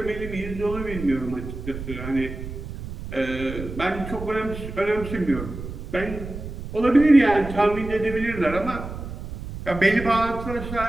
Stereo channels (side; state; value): right; noise; rumble, 9 dB below the sound